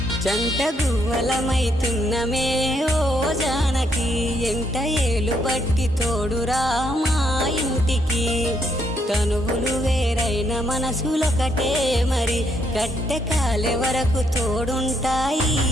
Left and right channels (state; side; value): normal; both; correlation 0.73